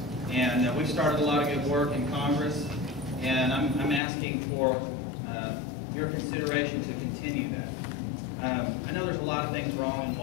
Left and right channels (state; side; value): drops out; right; at 4.0 s